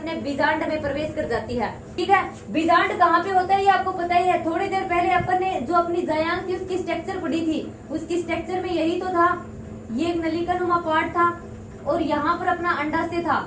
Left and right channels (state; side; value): identical; both; correlation 1.00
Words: बीजांड में प्रवेश कर जाती है, ठीक है। बीजांड कहाँ पे होता है ये आपको पता ही है। थोड़ी देर पहले अपन ने जो अपनी जायांग थी उसकी स्ट्रक्चर पढ़ी थी, उसकी स्ट्रक्चर में यही तो था, ये एक नलिका नुमा पार्ट था और यहाँ पर अपना अंडाशय था